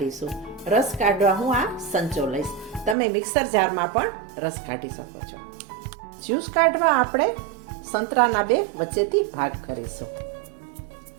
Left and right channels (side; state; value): left; drops out; at 3.0 s